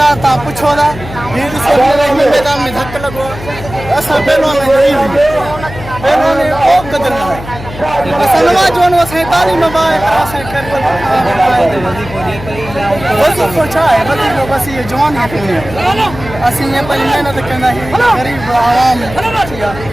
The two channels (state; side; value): noise; left; hum, 13 dB below the sound